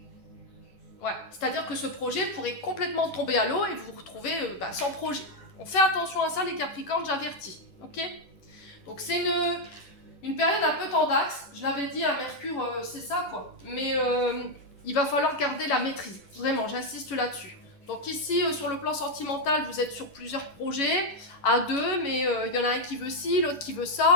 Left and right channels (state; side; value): late; right; 11 ms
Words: Ouais. C'est-à-dire que ce projet pourrait complètement tomber à l'eau et vous vous retrouvez sans projet. On fait attention à ça, les Capricornes, j'avertis. Ok? Donc, c'est une période un peu tendax. Je l'avais dit à Mercure, c'est ça, quoi. Mais il va falloir garder la maîtrise. Vraiment, j'insiste là-dessus. Donc ici, sur le plan sentimental, vous êtes sur plusieurs projets, à deux, mais il y en a un qui veut ci, l'autre qui veut